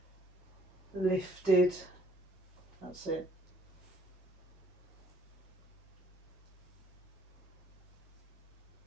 lifted. That's it.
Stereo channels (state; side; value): normal; both; correlation 0.62